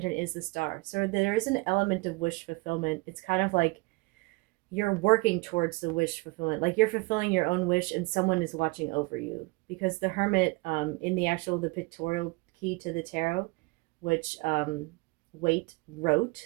is the star. So there is an element of wish fulfillment. It's kind of like you're working towards the wish fulfillment. Like you're fulfilling your own wish and someone is watching over you. Because the Hermit, in the pictorial key to the tarot, which Waite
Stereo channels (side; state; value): left; quieter; 25.8 dB